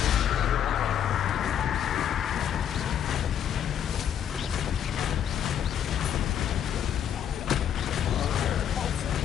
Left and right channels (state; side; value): quieter; right; 9.4 dB